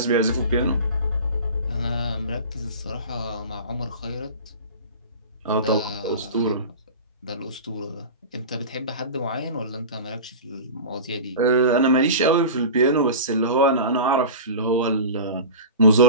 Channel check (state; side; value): inverted; both; correlation -0.33